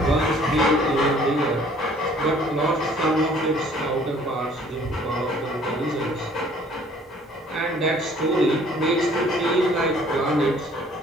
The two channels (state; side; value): normal; both; correlation 0.56